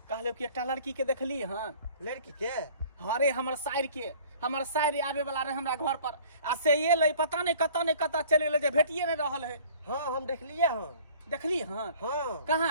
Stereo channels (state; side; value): inverted; both; correlation -0.50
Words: कहले कि एकटा लड़की के देखली हन। लड़की के हाँ रे हमर साइर आवे वाला रहे हमरा घर पर आ से ये ले पता नहीं कत्ता चल गेले जे भेटिए नहीं रहल है। हाँ हम देखलिए हाँ देखली हन हाँ